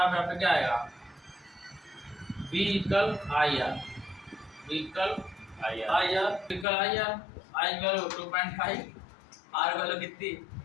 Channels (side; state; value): right; drops out; at 6.7 s